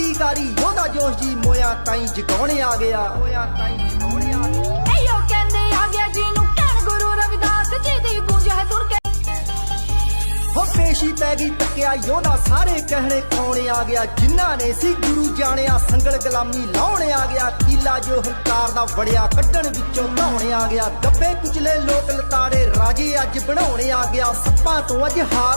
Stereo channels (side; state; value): both; inverted; correlation -1.00